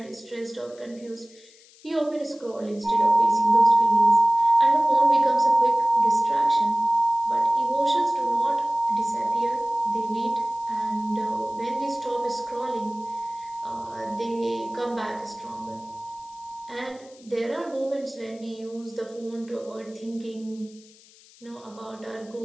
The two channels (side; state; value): left; noise; hiss, 25 dB below the sound